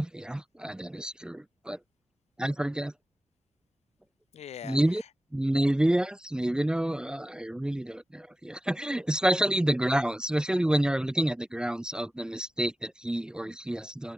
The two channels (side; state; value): both; normal; correlation 0.93